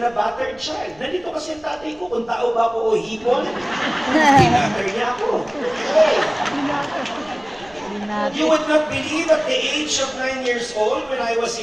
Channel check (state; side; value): noise; right; rumble, 27 dB below the sound